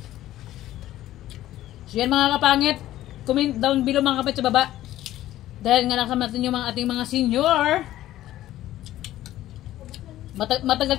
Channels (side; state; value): right; quieter; 14.1 dB